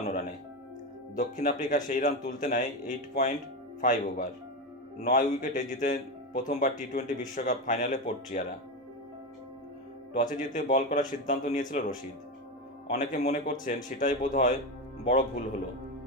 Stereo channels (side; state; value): both; normal; correlation 0.15